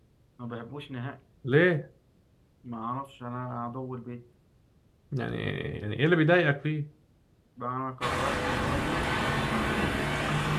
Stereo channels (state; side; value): identical; both; correlation 1.00